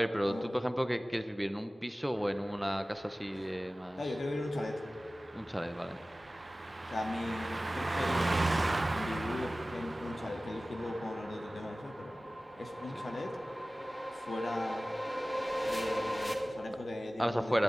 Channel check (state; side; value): normal; both; correlation 0.97